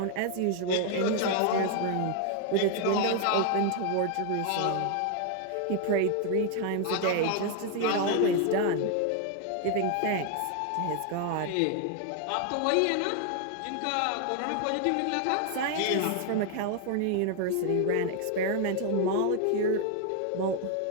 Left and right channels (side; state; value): both; different; correlation 0.00